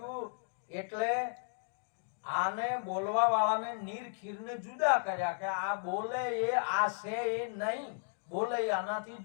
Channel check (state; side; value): silent; right; digital silence